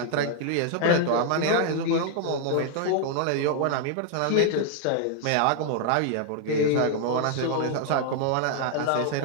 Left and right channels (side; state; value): both; different; correlation 0.00